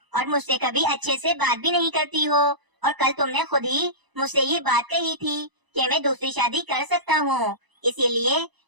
और मुझसे कभी अच्छे से बात भी नहीं करती हो, और कल तुमने खुद ही मुझसे ये बात कही थी कि मैं दूसरी शादी कर सकता हूँ, इसीलिए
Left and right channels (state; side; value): late; left; 1.0 ms